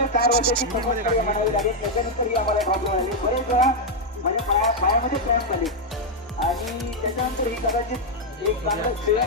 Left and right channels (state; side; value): normal; both; correlation -0.01